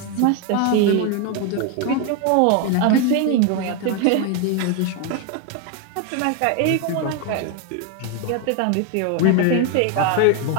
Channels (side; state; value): both; different; correlation 0.01